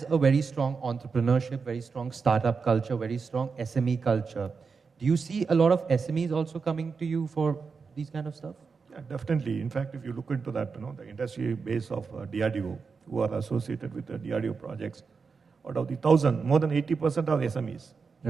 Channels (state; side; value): quieter; left; 5.1 dB